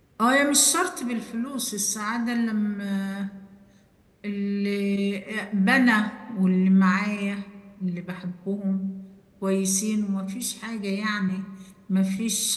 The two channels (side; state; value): both; identical; correlation 1.00